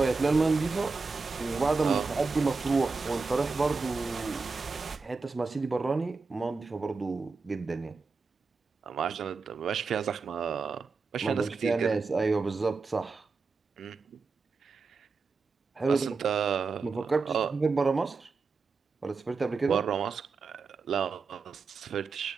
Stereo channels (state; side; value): quieter; left; 4.4 dB